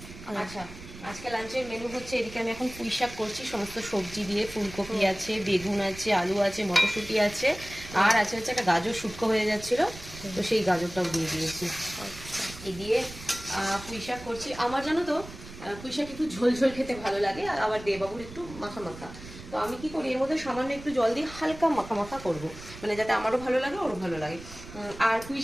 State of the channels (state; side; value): noise; right; rumble, 15 dB below the sound